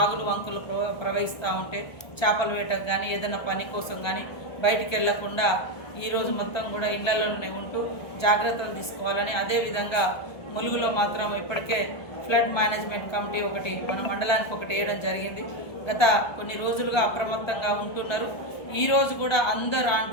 వంకులు ప్రవహిస్తూ ఉంటే చేపల వేటకు కానీ ఏదైనా పని కోసం కానీ బయటికి వెళ్లకుండా ఈరోజు మొత్తం కూడా ఇళ్లలోనే ఉంటూ జాగ్రత్తలు తీసుకోవాలని, అదేవిధంగా ములుగులో మాత్రం ఇప్పటికే ఫ్లడ్ మేనేజ్మెంట్ కమిటీ ఒకటి మన మండలానికి ఒకటి వేయడం జరిగింది. గత కొన్ని రోజులుగా అప్రమత్తంగా ఉంటున్నారు. ఈరోజు కూడా అందరూ ఆ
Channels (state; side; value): late; right; 1.3 ms